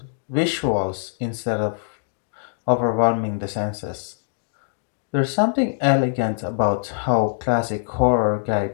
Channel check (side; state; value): right; silent; digital silence